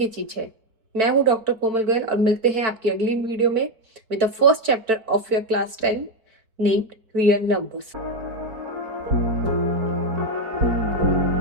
चीज है. मैं हूँ डॉक्टर कोमल गोयल और मिलते हैं आपकी अगली वीडियो में with the first chapter of your class 10 named real numbers.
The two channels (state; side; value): late; left; 4.5 ms